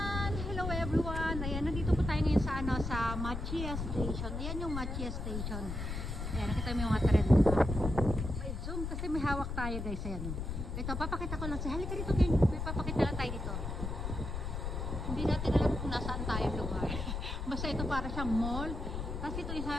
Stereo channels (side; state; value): left; noise; rumble, 4 dB below the sound